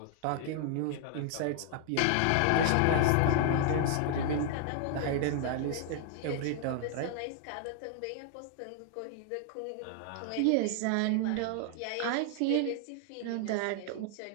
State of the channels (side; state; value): both; different; correlation 0.00